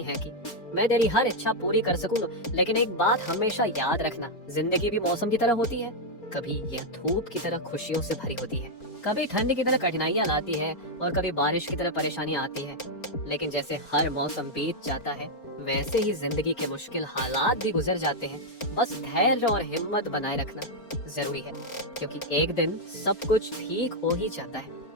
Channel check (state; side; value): late; right; 4.4 ms